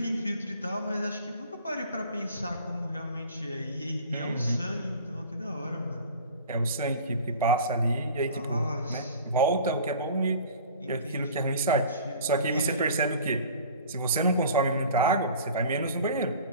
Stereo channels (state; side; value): inverted; both; correlation -0.43